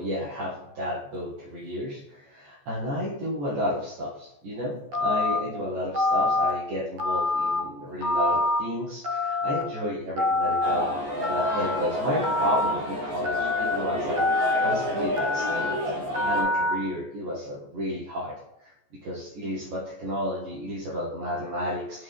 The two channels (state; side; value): late; left; 14 ms